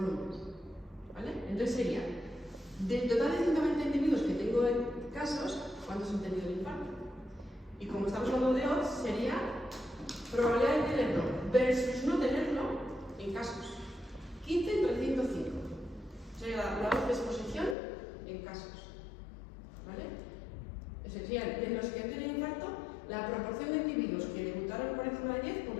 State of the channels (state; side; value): drops out; right; at 17.8 s